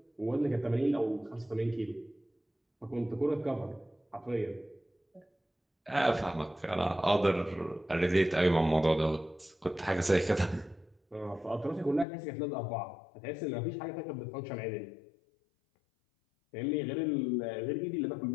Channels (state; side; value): drops out; right; at 12.1 s